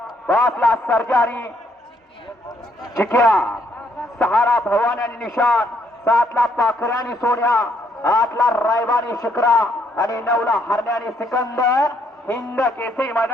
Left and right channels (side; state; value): both; normal; correlation 0.71